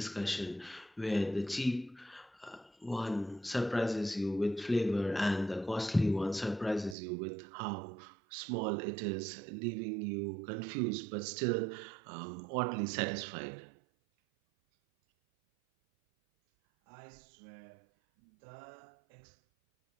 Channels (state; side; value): drops out; left; at 7.0 s